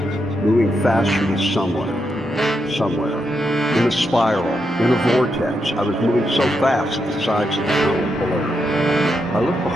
moving faster to somewhere. In a spiral, in a vortex, I was moving so fast that the sides of the tunnel blurred. I looked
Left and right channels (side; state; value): both; normal; correlation 0.83